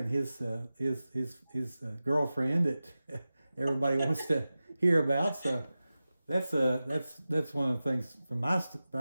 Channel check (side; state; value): both; inverted; correlation -0.95